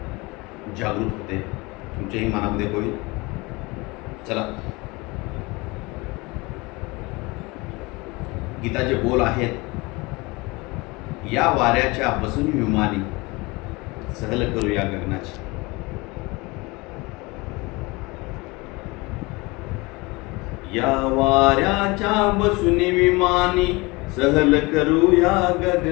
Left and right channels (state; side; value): quieter; right; 24.5 dB